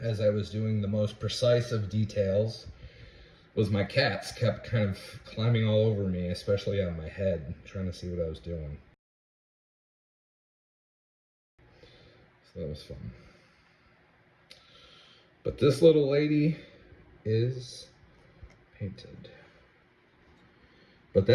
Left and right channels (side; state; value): both; identical; correlation 1.00